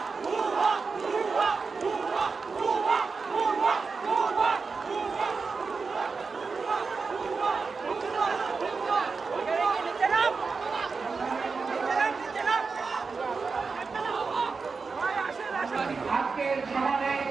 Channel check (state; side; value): quieter; left; 4.7 dB